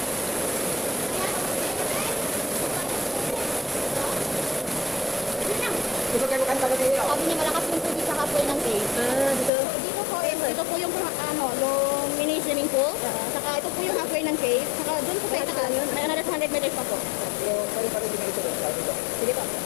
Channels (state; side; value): drops out; right; at 9.5 s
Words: Gusto kayo kanta kasi yun. Sabi niya malakas yung tubig sa halfway ng cave. Ah, dito. So, dito po is, ito po yung yung mini swimming pool. Saka ito po yung halfway ng cave. Saka doon po sa itaas, may another 100 meters pa po. So, pwede pa rin dinito doon. Sabi ko. Sige po.